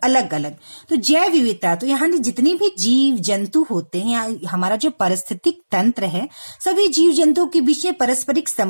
अलग अलग। तो जैव विविधता, तो यहाँ जितने भी जीव जंतु होते हैं, हमारा जो पारिस्थितिक तंत्र है, सभी जीव जंतुओं के बीच में पारस्परिक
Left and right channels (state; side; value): inverted; both; correlation -1.00